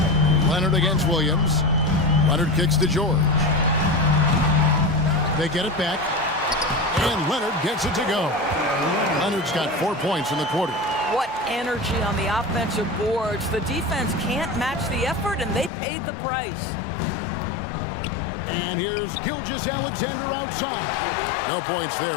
Leonard against Williams. Leonard kicks to George. They get it back. And Leonard gets it to go. Leonard's got 4 points in the quarter. What energy on the offensive boards. The defense can't match the effort, and they paid the price. And here's Gilgeous-Alexander outside. No points there,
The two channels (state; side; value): drops out; right; at 15.7 s